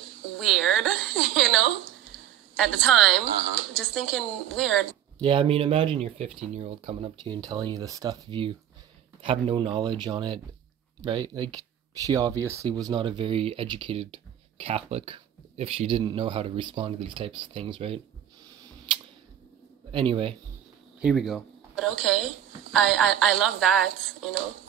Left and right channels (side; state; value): left; quieter; 10.6 dB